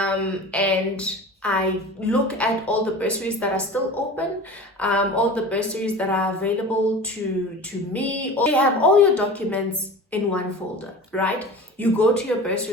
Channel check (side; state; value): both; normal; correlation 0.36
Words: I look at all the bursaries that are still open, all the bursaries that are available to me. You have all your documents in one folder, right? You go to your